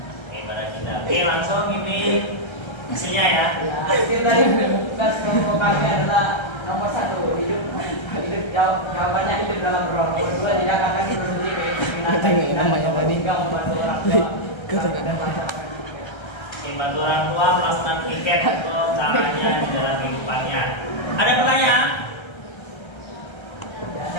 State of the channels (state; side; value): late; right; 1.3 ms